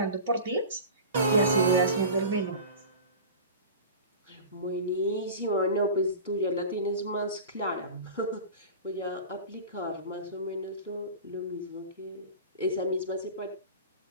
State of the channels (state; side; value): inverted; both; correlation -0.34